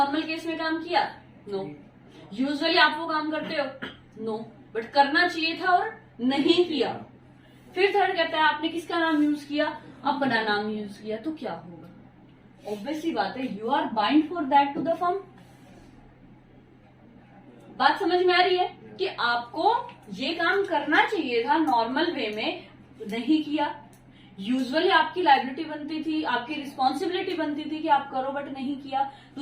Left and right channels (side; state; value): both; identical; correlation 1.00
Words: केस में काम किया? नो। यूजुअली आप वो काम करते हो? नो, बट करना चाहिए था और नहीं किया। फिर थर्ड कहता है आपने किसका नाम यूज किया? अपना नाम यूज किया, तो क्या होगा? ऑब्वियसली बात है, you are bind for that to the firm. बात समझ में आ रही है कि आपको ये काम करना चाहिए था नॉर्मल वे में, नहीं किया। यूजुअली आपकी लायबिलिटी बनती थी, आपकी रिस्पॉन्सिबिलिटी बनती थी कि आप करो, बट नहीं किया।